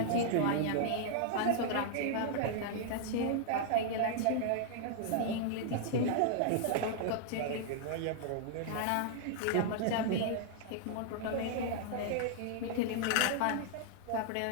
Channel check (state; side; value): different; both; correlation -0.01